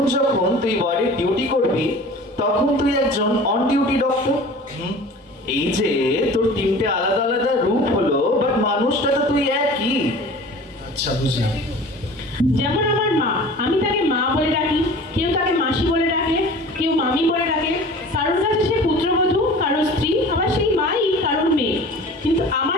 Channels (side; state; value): both; normal; correlation 0.41